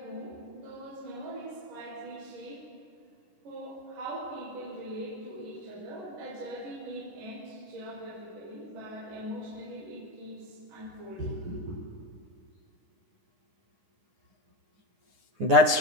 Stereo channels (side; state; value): left; late; 9.8 ms